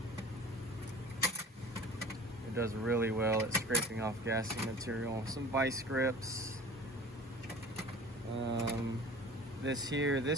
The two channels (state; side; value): normal; both; correlation 0.42